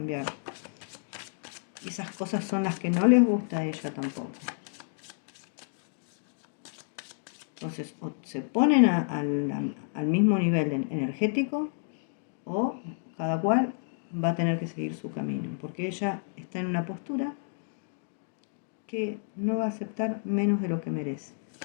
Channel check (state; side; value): silent; right; digital silence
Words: Y esas cosas son las que no les gusta a ella tampoco. Entonces, o se ponen al mismo nivel energético, o cada cual va a tener que seguir su camino, porque ella está en una postura que no va a aceptar menos de lo que merece.